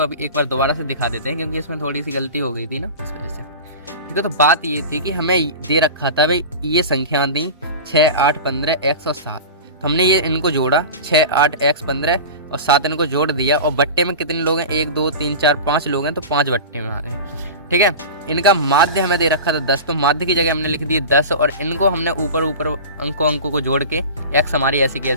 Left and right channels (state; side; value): inverted; both; correlation -0.30